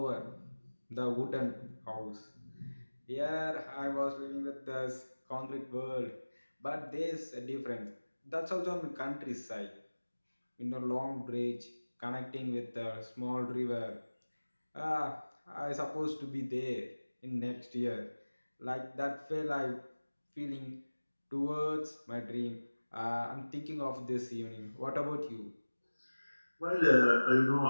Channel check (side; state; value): both; inverted; correlation -1.00